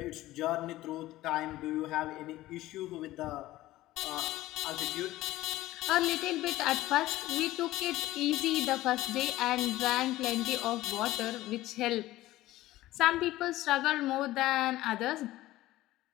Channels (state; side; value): quieter; right; 16.3 dB